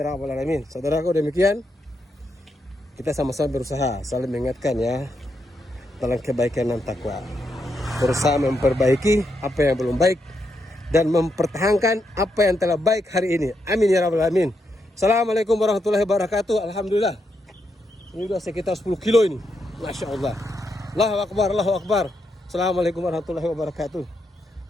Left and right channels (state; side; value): normal; both; correlation 0.81